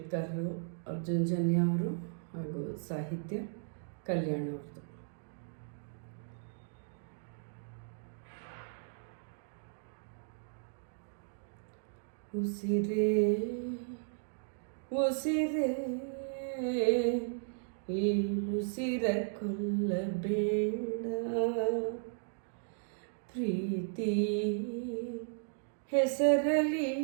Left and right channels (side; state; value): left; silent; digital silence